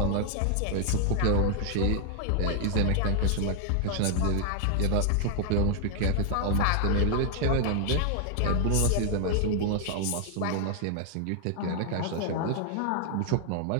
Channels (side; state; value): both; different; correlation 0.00